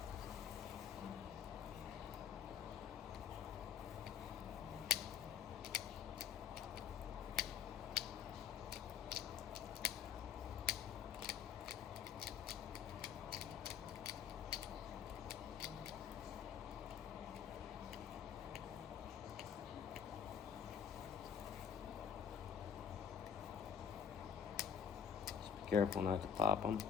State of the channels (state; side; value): quieter; right; 7.7 dB